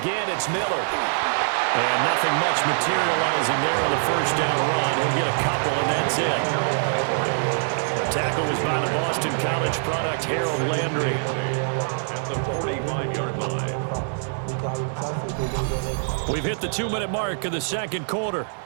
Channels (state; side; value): silent; left; digital silence